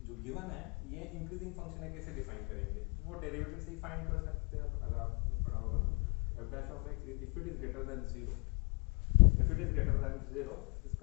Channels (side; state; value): right; quieter; 36.4 dB